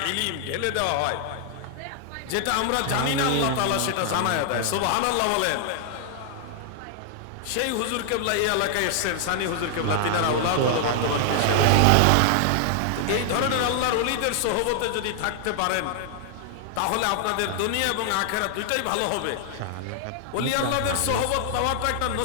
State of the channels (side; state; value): both; different; correlation 0.00